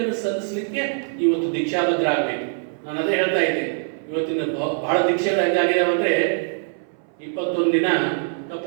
ಸಲ್ಲಿಸಲಿಕ್ಕೆ ಇವತ್ತು ದೀಕ್ಷಾಬದ್ಧ ಆಗಬೇಕು. ನಾನು ಅದೇ ಹೇಳ್ತಾ ಇದ್ದೆ, ಇವತ್ತಿನ ಬಹಳ ದೀಕ್ಷೆಗಳು ಹೆಂಗಾಗಿದಾವೆ ಅಂದ್ರೆ 21 ದಿನ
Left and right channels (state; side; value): silent; left; 61 dB below the other